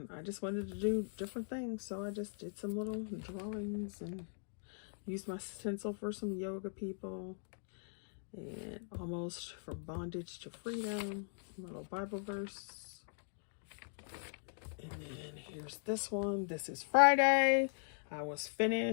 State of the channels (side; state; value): right; silent; digital silence